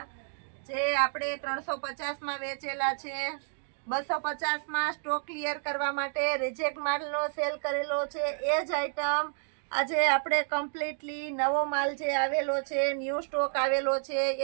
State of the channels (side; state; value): left; silent; digital silence